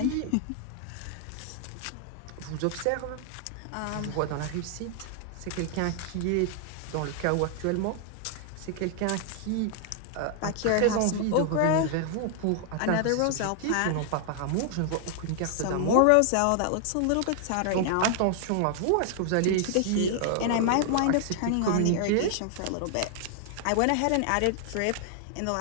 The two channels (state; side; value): different; both; correlation 0.00